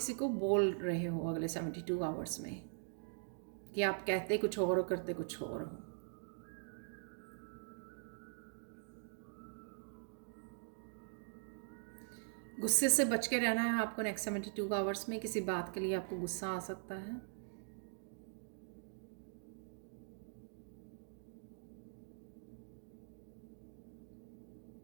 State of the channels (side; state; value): left; silent; digital silence